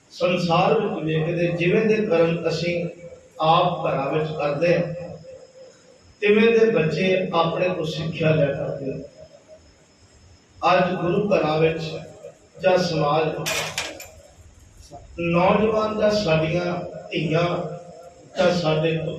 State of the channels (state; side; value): identical; both; correlation 1.00